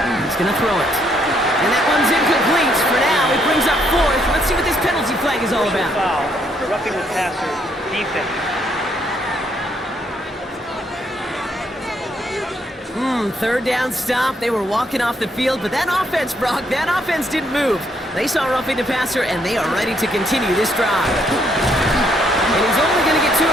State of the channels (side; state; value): both; normal; correlation 0.71